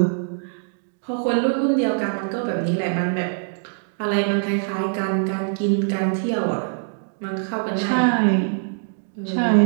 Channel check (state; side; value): silent; left; digital silence